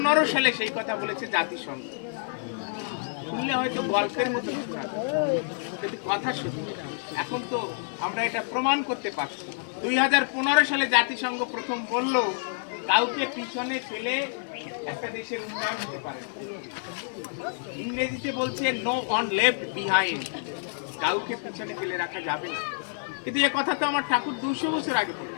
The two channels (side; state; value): right; silent; 57 dB below the other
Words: সালে সেই কথা বলেছে জাতিসংঘ। শুনলে হয়তো গল্পের মতো শোনাবে, কিন্তু কথা সত্যি। এখন তো আমরা এটা প্রমাণ করতে পারছি। 2015 সালে জাতিসংঘ প্রথম বলল, কাউকে পিছনে ফেলে একটা দেশের উন্নয়ন হতে পারে না। ইংরেজিতে বলছে নো ওয়ান লেফট বিহাইন্ড, কাউকে পিছনে ফেলে রাখা যাবে না। কিন্তু এ কথা তো আমার ঠাকুর 200 বছর আগে